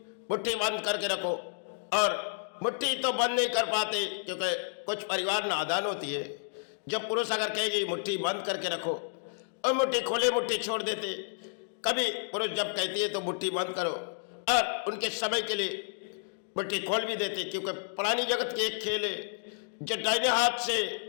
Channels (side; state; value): right; silent; digital silence